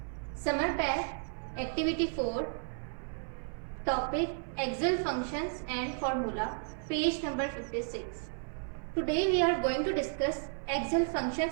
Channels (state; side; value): silent; left; 56 dB below the other